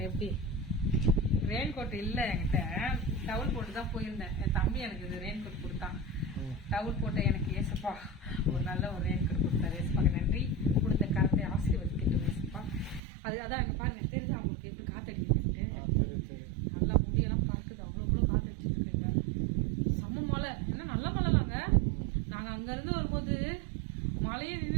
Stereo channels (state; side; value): drops out; left; at 13.0 s